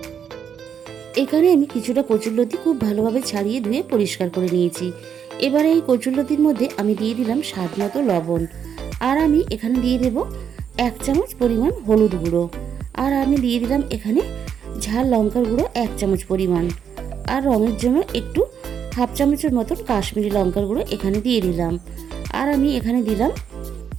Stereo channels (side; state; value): left; quieter; 7.9 dB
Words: এখানে আমি কিছুটা কচুরলতি খুব ভালোভাবে ছাড়িয়ে ধুয়ে পরিষ্কার করে নিয়েছি। এবারে এই কচুরলতির মধ্যে আমি দিয়ে দিলাম স্বাদ মতো লবণ, আর আমি এখানে দিয়ে দেব 1 চামচ পরিমাণ হলুদ গুঁড়ো, আর আমি দিয়ে দিলাম এখানে ঝাল লঙ্কার গুঁড়ো 1 চামচ পরিমাণ, আর রঙের জন্য একটু 1/2 চামচের মতন কাশ্মীরি লঙ্কার গুঁড়ো এখানে দিয়ে দিলাম। আর আমি এখানে দিলাম